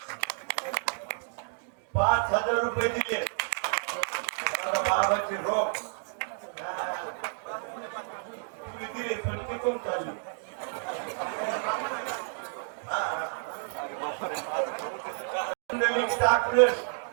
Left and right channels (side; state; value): left; silent; digital silence